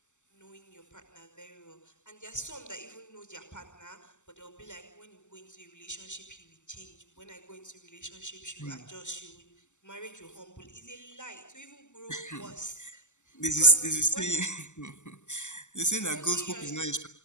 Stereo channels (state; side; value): late; right; 0.84 ms